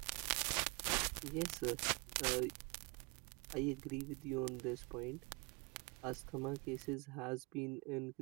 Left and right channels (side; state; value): left; quieter; 28.9 dB